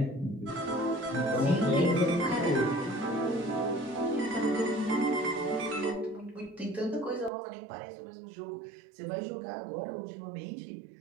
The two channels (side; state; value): left; drops out; at 7.3 s